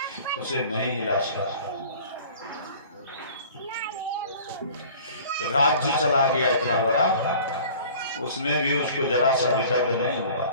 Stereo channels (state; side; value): inverted; both; correlation -0.47